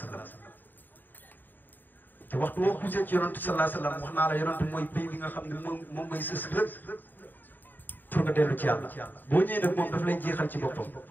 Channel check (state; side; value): late; right; 0.090 ms